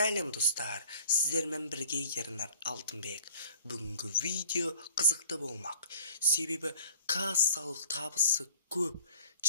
достар, сіздермен бірге Ернар Алтынбек. Бүгінгі видео қызықты болмақ. Себебі кассалық табысы көп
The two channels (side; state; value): both; inverted; correlation -0.51